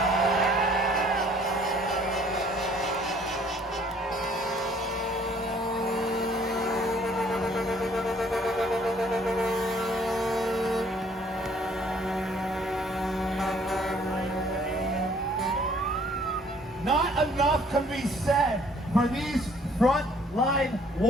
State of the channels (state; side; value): normal; both; correlation 0.60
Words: Not enough can be said for these frontline